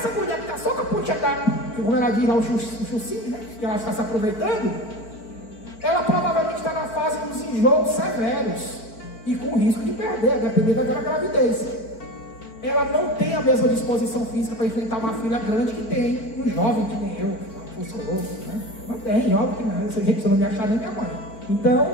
mulher que está só com a pontinha da, como ela diz lá, o chucinho, né, que ela está se aproveitando, ela provavelmente está na fase dos enjoos severos e com risco de perder, a depender da gravidez. Ela não tem a mesma disposição física para enfrentar uma filha grande que tem um jovem que nem eu, né? Não tem, óbvio que não. Essa gente não me achar nem minha mãe. Então,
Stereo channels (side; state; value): right; late; 4.5 ms